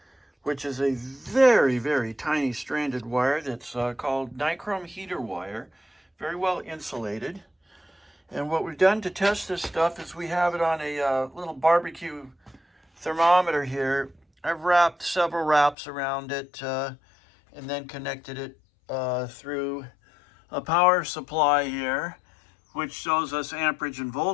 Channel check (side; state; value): right; drops out; at 15.8 s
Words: which is a very, very tiny stranded wire that's called nichrome heater wire, very well insulated. And what we've done to test this stuff is we have it on a little barbecue thermometer here. I've wrapped several wraps around it and then connected it through a power supply here, which shows us amperage and